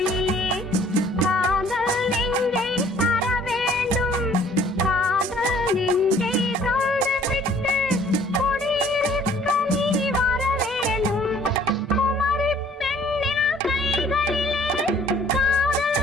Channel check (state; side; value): normal; both; correlation 0.56